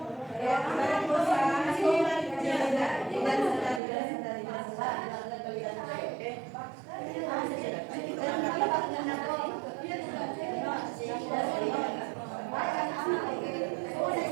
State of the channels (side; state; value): left; drops out; at 3.8 s